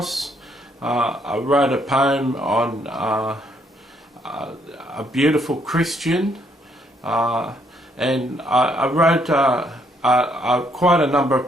I wrote a poem on a beautiful Christian, and I wrote quite a number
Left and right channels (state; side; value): normal; both; correlation 0.70